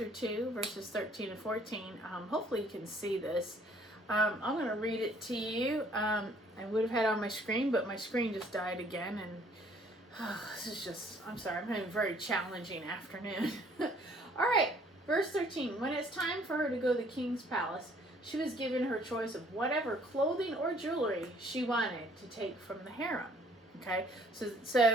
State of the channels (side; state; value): both; normal; correlation 0.60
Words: 2, verses 13 and 14. Hopefully you can see this. I'm going to read it to you. I would have had it on my screen, but my screen just died again, and this is just, I'm sorry, I'm having a very challenging afternoon. All right. Verse 13, when it's time for her to go to the king's palace, she was given her choice of whatever clothing or jewelry she wanted to take from the harem. Okay,